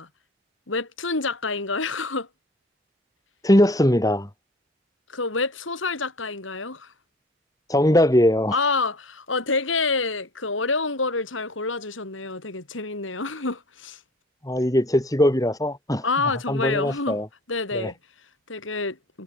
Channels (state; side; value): normal; both; correlation 0.48